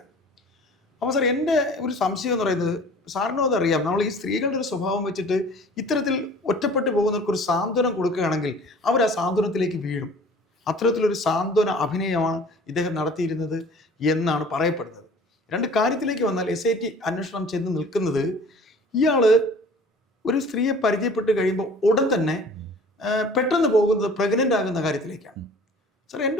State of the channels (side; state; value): both; normal; correlation 0.47